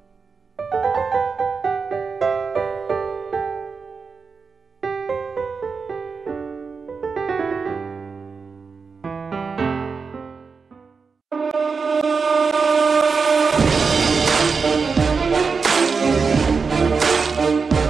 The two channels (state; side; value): quieter; left; 5.0 dB